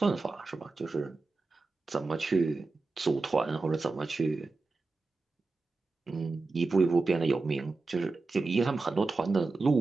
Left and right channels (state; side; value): quieter; left; 3.7 dB